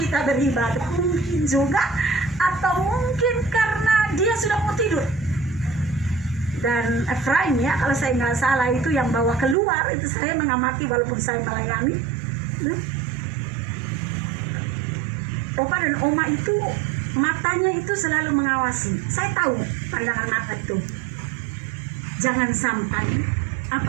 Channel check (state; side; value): drops out; left; at 9.6 s